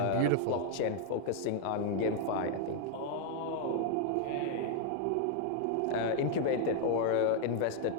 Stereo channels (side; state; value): both; different; correlation 0.00